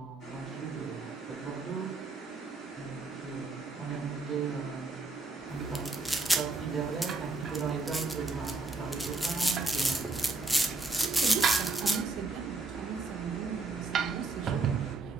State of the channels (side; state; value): left; quieter; 3.6 dB